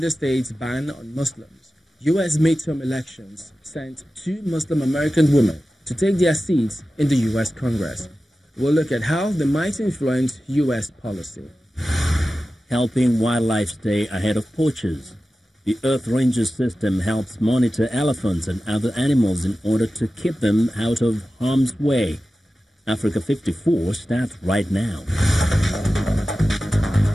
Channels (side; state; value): both; normal; correlation 0.94